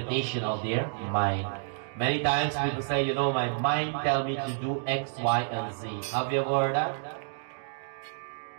of their mind. Many times people say, you know, my mind tell me to do X, Y, and Z. Have you ever heard that?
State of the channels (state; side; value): silent; left; digital silence